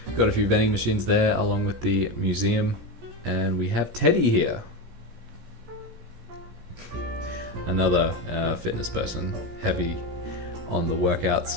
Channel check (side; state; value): left; late; 17 ms